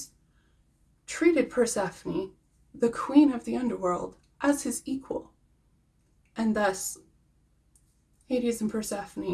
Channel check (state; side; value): identical; both; correlation 1.00